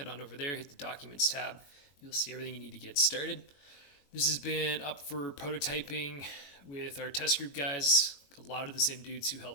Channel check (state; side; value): late; right; 21 ms